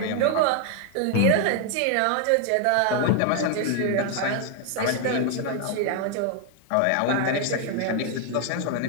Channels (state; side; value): different; both; correlation 0.01